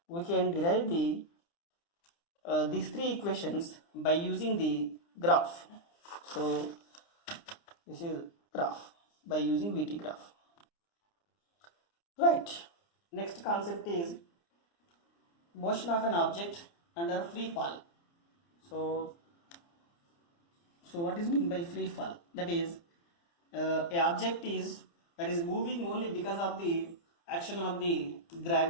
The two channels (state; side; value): late; right; 29 ms